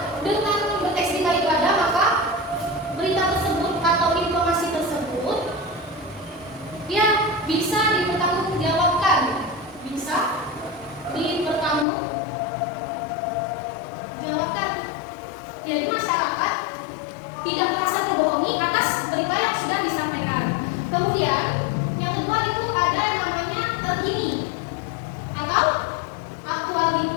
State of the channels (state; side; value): drops out; right; at 11.9 s